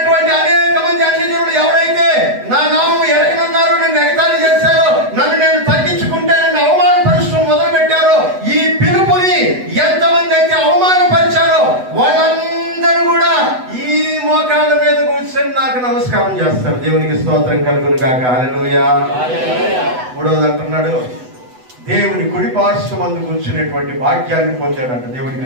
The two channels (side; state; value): left; late; 8.0 ms